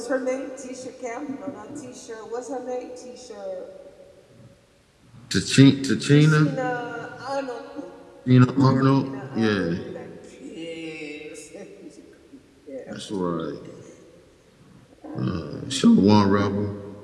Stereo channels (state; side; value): identical; both; correlation 1.00